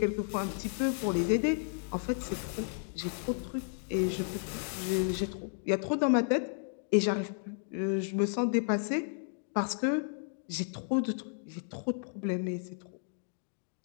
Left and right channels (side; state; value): right; silent; digital silence